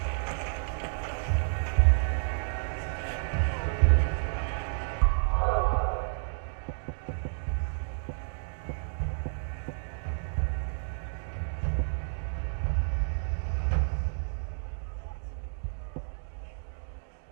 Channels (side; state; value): left; silent; digital silence